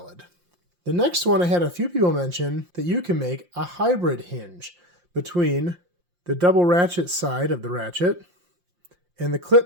The next one I had a few people mention that you can make a hybrid hinge between the double ratchet side of the ratchet and the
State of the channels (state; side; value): late; left; 5.7 ms